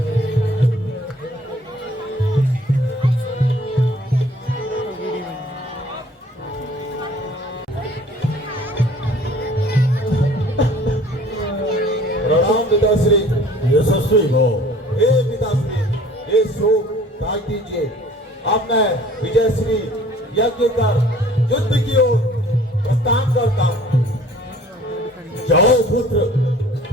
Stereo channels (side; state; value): both; normal; correlation 0.51